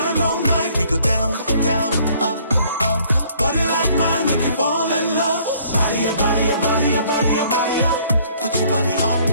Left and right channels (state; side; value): inverted; both; correlation -0.60